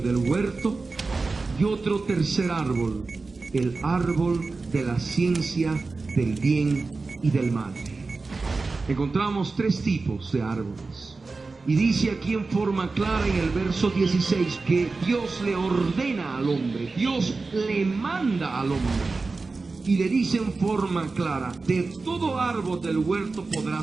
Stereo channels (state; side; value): quieter; left; 3.9 dB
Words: del huerto. Y otro tercer árbol, el árbol de la ciencia del bien y del mal. Encontramos tres tipos de árboles. Y dice aquí en forma clara en el verso 16 que Dios le ordena al hombre, Dios le manda al hombre. Y le dice en forma clara: de todo árbol del huerto